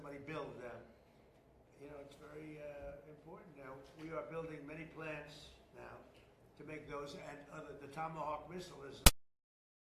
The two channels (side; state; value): both; identical; correlation 1.00